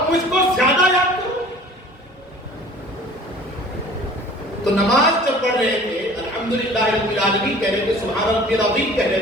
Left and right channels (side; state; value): both; normal; correlation 0.47